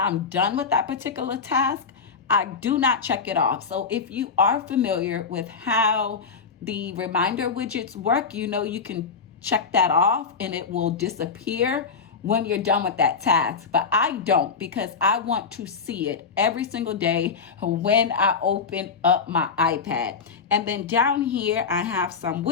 done with that particular task, I do not check it off. So if you are familiar with how the reminder widgets work, you know you can check that off and it will disappear when you're done with that task. But I don't, because I want to see it every single day when I open up my iPad. And then down here, I have some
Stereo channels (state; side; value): quieter; right; 5.5 dB